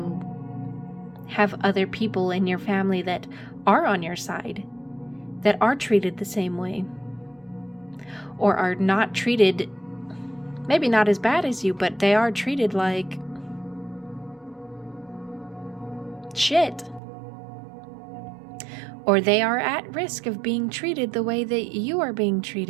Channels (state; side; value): drops out; left; at 17.0 s